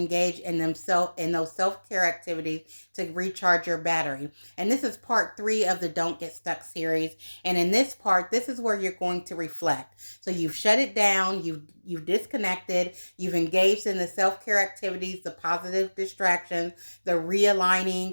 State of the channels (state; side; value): inverted; both; correlation -1.00